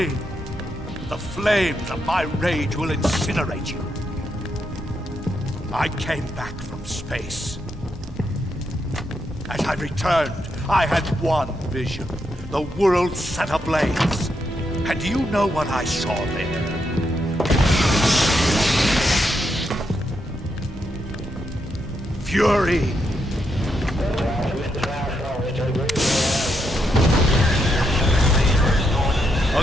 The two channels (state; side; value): normal; both; correlation 0.81